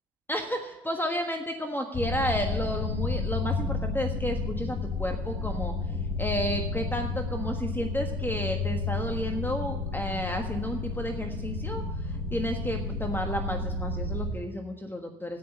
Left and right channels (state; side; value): normal; both; correlation 0.48